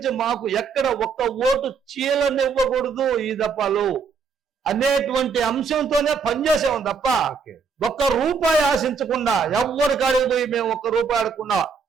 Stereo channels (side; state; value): left; quieter; 5.6 dB